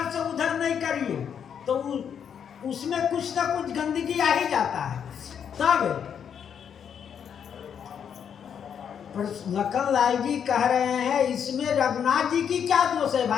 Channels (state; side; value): quieter; right; 8.0 dB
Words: से उधर नहीं करिए तो उसमें कुछ ना कुछ गंदगी आ ही जाता है। तब लखन लाल जी कह रहे हैं इसमें रघुनाथ जी की क्या दोष है